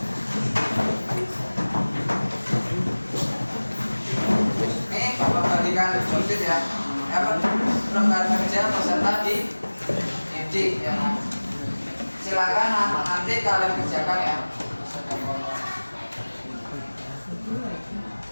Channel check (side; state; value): both; inverted; correlation -1.00